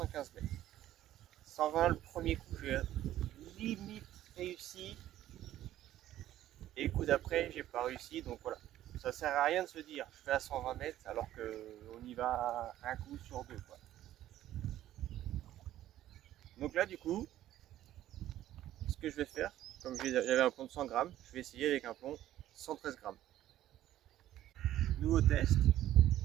mètres. 120 le premier coup, j'ai limite réussi. Et le coup d'après, j'ai pas réussi. Donc voilà, ça sert à rien de se dire je fais à 120 mètres alors qu'on y va un coup sur deux, quoi. Donc là, du coup, ce que je vais faire, comme j'avais un plomb de 100 grammes, je vais essayer avec un plomb 113 grammes. Nouveau test,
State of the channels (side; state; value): left; quieter; 13.2 dB